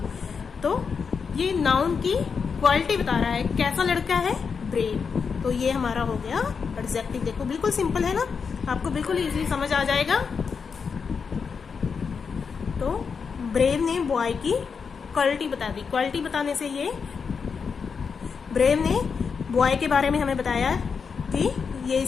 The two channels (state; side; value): quieter; right; 5.8 dB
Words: तो ये नाउन की क्वालिटी बता रहा है, कैसा लड़का है? ब्रेव। तो ये हमारा हो गया एडजेक्टिव। देखो बिल्कुल सिंपल है ना, आपको बिल्कुल इजीली समझ आ जाएगा। तो ब्रेव ने बॉय की क्वालिटी बता दी। क्वालिटी बताने से ये ब्रेव ने बॉय के बारे में हमें बताया कि ये